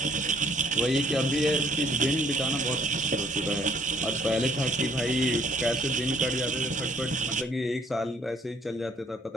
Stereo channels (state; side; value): normal; both; correlation 0.61